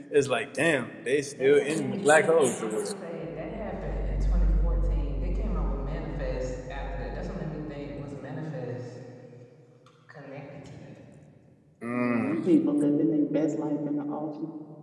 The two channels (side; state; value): both; identical; correlation 1.00